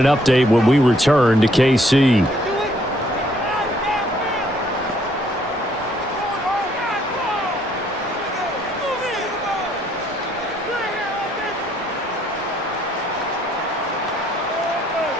update when we return to KC.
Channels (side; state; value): both; normal; correlation 0.66